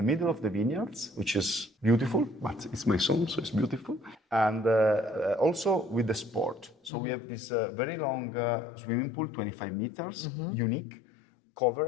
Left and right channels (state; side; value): drops out; right; at 6.9 s